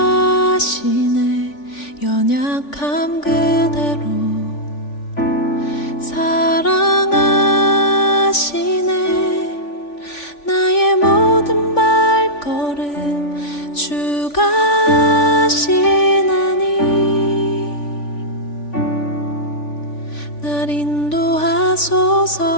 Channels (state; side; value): late; right; 3.5 ms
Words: 연약함 그대로 사랑하시네. 나의 모든 발걸음 주가 하시나니 날 인도하소서.